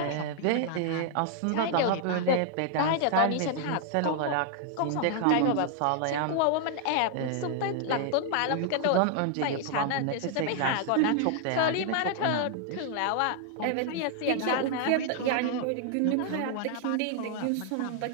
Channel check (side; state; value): both; different; correlation 0.00